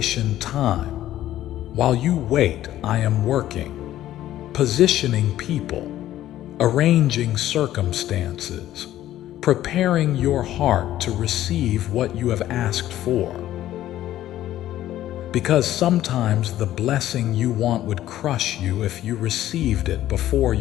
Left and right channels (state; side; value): quieter; right; 13.3 dB